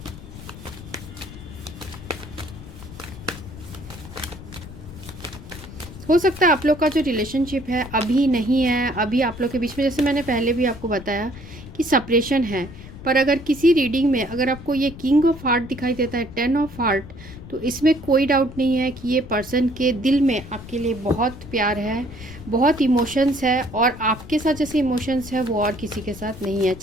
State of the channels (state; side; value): noise; left; rumble, 15 dB below the sound